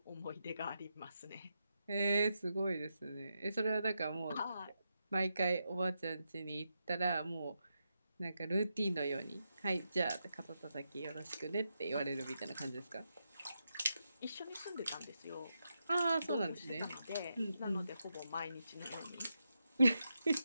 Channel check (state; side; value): inverted; both; correlation -0.86